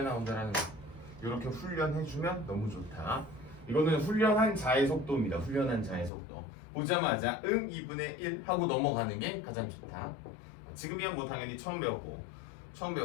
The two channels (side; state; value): right; drops out; at 6.1 s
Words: 나온다라는 거. 이렇게 훈련해주면 너무 좋다. 이거는 훈련한 자의 속도입니다. 훈련한 자의 속도. 보자마자 2분의 1 하고 넘어가는 게 가장 좋다. 지금이야 뭐 당연히 처음 배웠지만